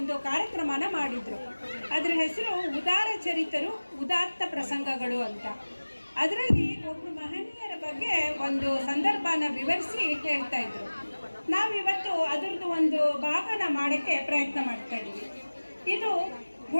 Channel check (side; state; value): both; inverted; correlation -1.00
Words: ಕಾರ್ಯಕ್ರಮನ ಮಾಡಿದರು. ಅದರ ಹೆಸರು ಉದಾರ ಚರಿತರು ಉದಾತ್ತ ಪ್ರಸಂಗಗಳು ಅಂತ. ಅದರಲ್ಲಿ ಒಬ್ಬರು ಮಹನೀಯರ ಬಗ್ಗೆ ಒಂದು ಸಂದರ್ಭನ ವಿವರಿಸಿ ಹೇಳ್ತಾ ಇದ್ರು. ನಾವಿವತ್ತು ಅದರದ್ದು ಒಂದು ಭಾಗನ ಮಾಡೋಕ್ಕೆ ಪ್ರಯತ್ನ ಮಾಡ್ತಾ ಇದ್ದೀವಿ. ಇದು